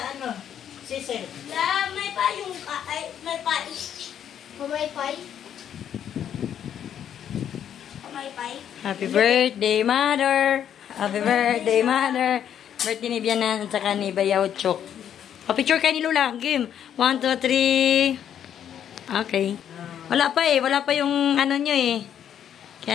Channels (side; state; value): right; quieter; 9.5 dB